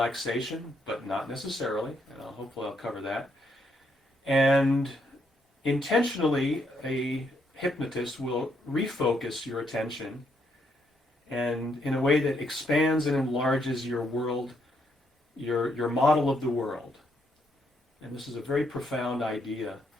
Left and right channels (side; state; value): both; normal; correlation 0.75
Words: but not necessarily, and hopefully I'll cover that. And intentionally, a hypnotist will refocus your attention, and in a way that expands and enlarges your world, your model of the world. And this is a very profound idea,